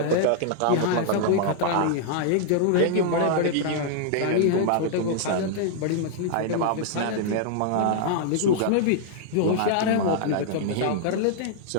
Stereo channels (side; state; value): both; different; correlation -0.01